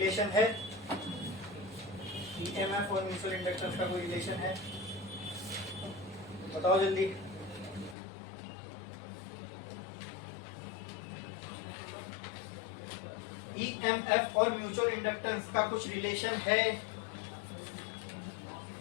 है? ईएमएफ और म्यूचुअल इंडक्टेंस का कोई रिलेशन है? बताओ जल्दी। ईएमएफ और म्यूचुअल इंडक्टेंस का कुछ रिलेशन है?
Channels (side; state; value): right; drops out; at 8.0 s